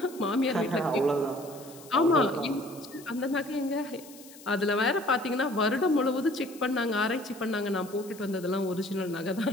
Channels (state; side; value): noise; left; hiss, 20 dB below the sound